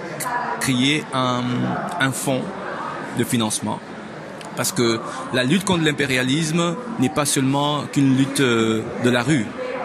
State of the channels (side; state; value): both; identical; correlation 1.00